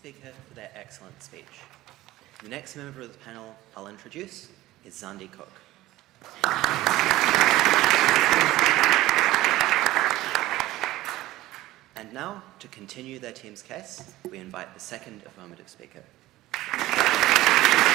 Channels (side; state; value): left; quieter; 16.8 dB